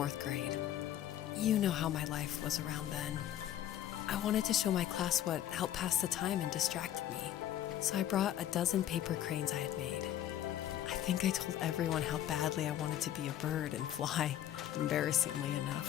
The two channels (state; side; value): quieter; right; 11.7 dB